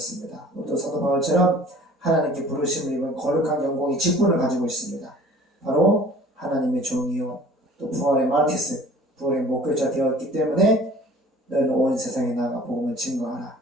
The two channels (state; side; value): normal; both; correlation 0.48